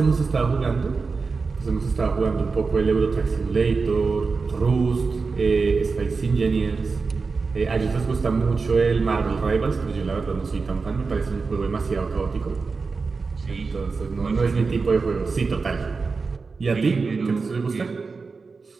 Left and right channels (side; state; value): left; quieter; 4.5 dB